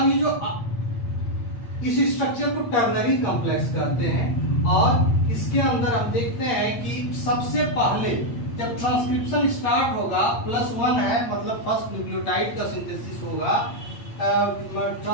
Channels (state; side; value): late; right; 8.6 ms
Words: ये जो इस स्ट्रक्चर को टर्नरी कॉम्प्लेक्स कहते हैं और इसके अंदर आप देखते हैं कि सबसे पहले जब ट्रांसक्रिप्शन स्टार्ट होगा +1 है, मतलब फर्स्ट न्यूक्लियोटाइड का सिंथेसिस होगा,